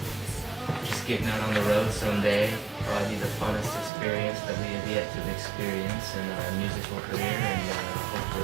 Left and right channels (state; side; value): drops out; left; at 3.9 s